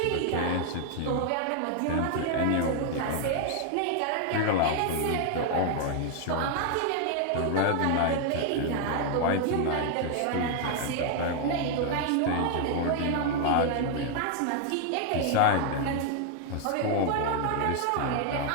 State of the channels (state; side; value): different; both; correlation 0.00